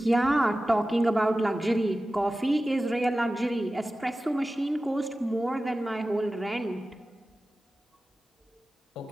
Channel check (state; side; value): normal; both; correlation 0.95